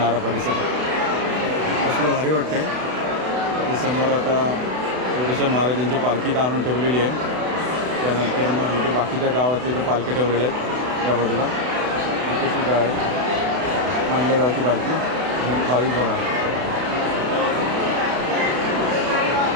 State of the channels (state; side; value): late; left; 32 ms